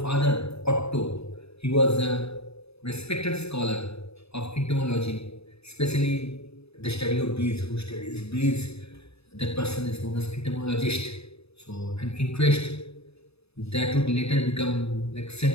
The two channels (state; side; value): late; right; 0.79 ms